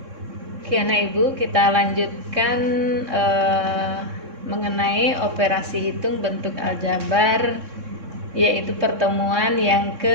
Oke anak ibu, kita lanjutkan mengenai operasi hitung bentuk aljabar, yaitu pertemuan yang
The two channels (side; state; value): left; late; 3.6 ms